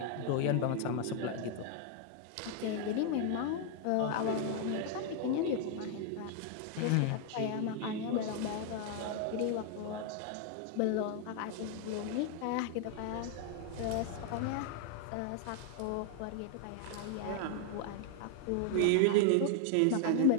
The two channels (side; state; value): both; different; correlation 0.00